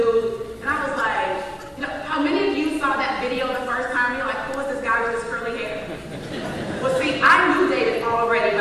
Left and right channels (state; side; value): identical; both; correlation 1.00